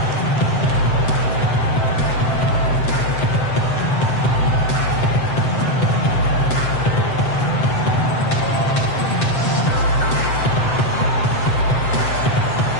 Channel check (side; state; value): right; late; 7.7 ms